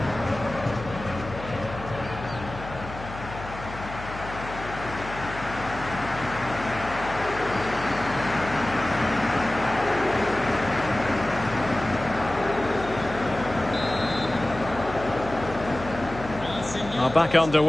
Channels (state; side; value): noise; left; hum, 12 dB below the sound